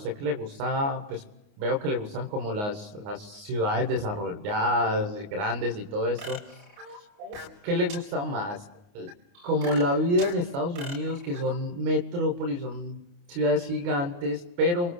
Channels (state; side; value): late; left; 29 ms